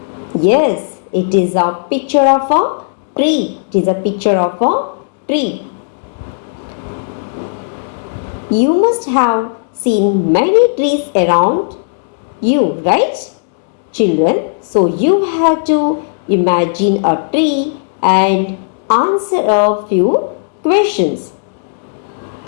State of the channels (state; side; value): silent; right; digital silence